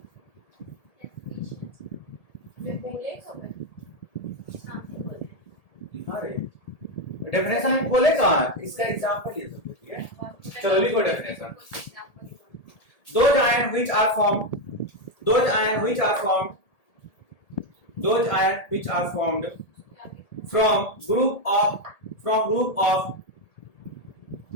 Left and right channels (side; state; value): right; late; 1.8 ms